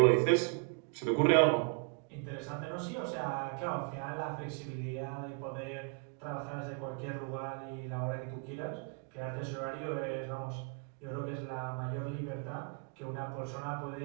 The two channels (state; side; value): quieter; left; 38.4 dB